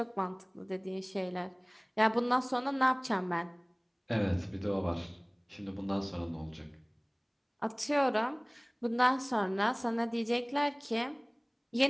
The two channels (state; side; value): identical; both; correlation 1.00